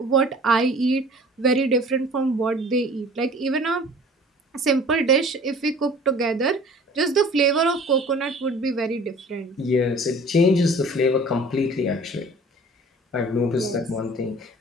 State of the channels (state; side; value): normal; both; correlation 0.47